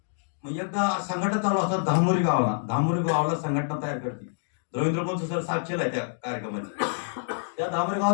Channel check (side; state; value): right; silent; digital silence